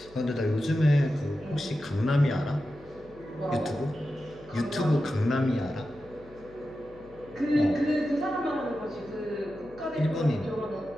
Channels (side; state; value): left; noise; hum, 23 dB below the sound